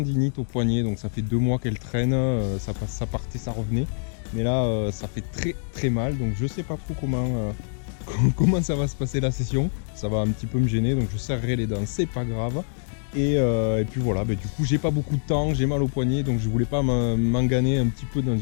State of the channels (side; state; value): right; silent; digital silence